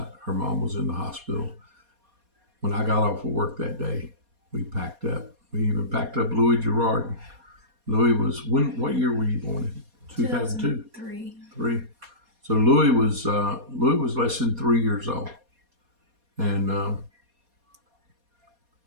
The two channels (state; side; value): late; left; 4.2 ms